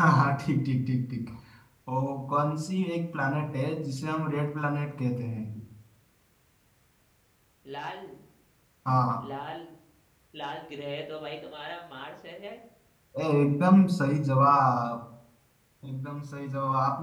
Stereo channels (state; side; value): identical; both; correlation 1.00